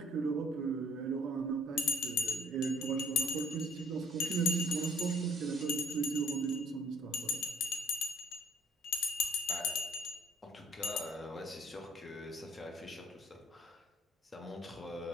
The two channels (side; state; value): both; normal; correlation 0.60